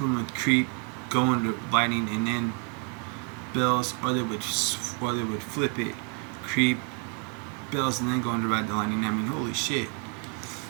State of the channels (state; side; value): quieter; left; 35.9 dB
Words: with Creep, go into Lightning, and then Bells, or they would flip it, Creep, Bells, and then go into Ride the Lightning. I mean, holy shit.